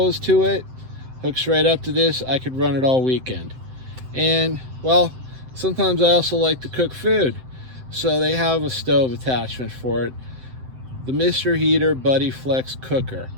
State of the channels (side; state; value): left; late; 7.8 ms